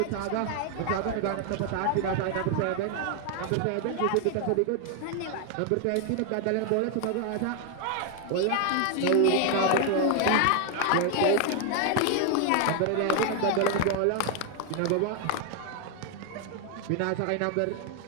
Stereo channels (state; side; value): different; both; correlation 0.00